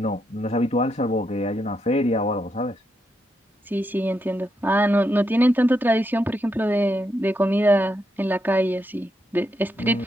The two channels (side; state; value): both; normal; correlation 0.81